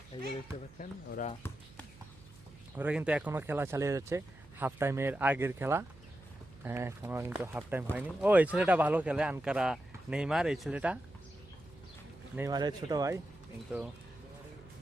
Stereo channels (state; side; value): noise; right; hum, 22 dB below the sound